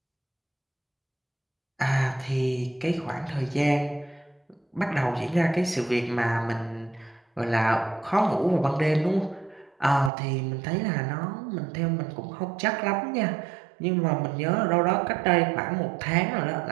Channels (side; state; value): left; drops out; at 10.1 s